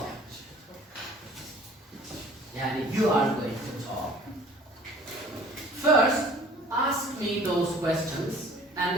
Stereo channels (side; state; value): both; normal; correlation 0.50